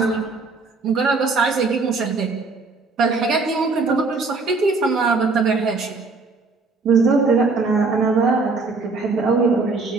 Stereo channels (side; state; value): left; quieter; 4.0 dB